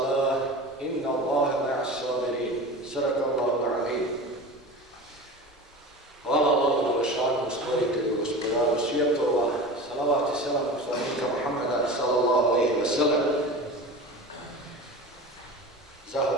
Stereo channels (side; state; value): both; normal; correlation 0.33